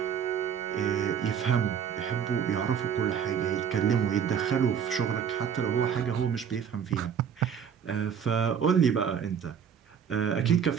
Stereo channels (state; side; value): quieter; left; 7.8 dB